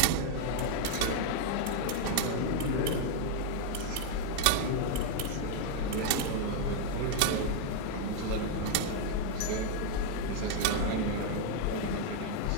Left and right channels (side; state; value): both; different; correlation 0.00